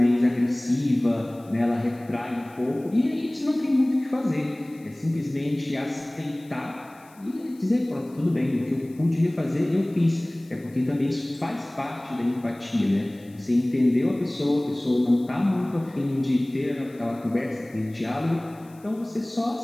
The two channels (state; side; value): noise; left; hiss, 28 dB below the sound